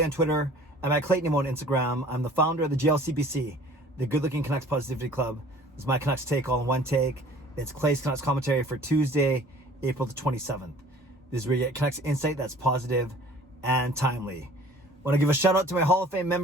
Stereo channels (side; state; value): both; normal; correlation 0.50